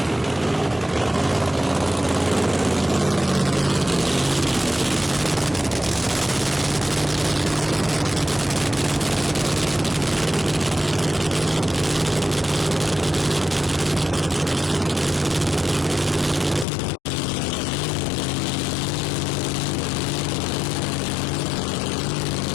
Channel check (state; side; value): drops out; right; at 16.7 s